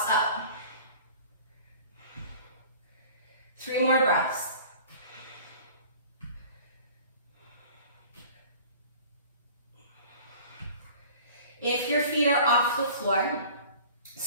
up. 3 more breaths. If your feet are off the floor,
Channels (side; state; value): both; inverted; correlation -0.45